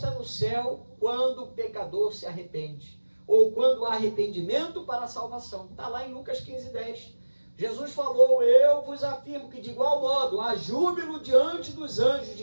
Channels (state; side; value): inverted; both; correlation -1.00